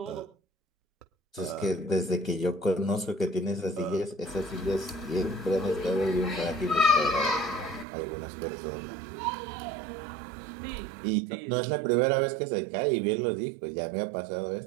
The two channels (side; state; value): left; drops out; at 7.9 s